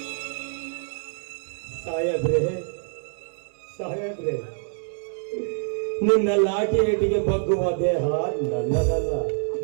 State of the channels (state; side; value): silent; left; 61 dB below the other